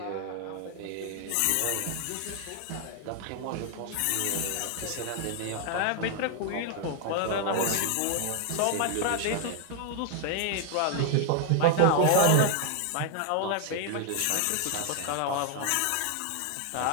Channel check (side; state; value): both; different; correlation 0.00